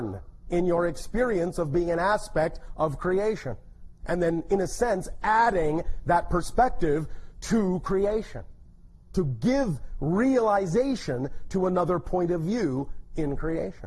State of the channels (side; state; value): both; identical; correlation 1.00